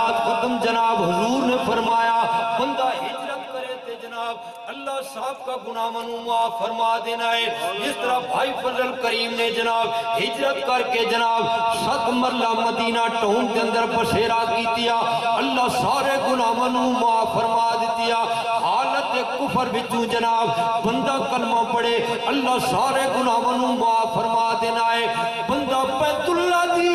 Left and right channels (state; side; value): identical; both; correlation 1.00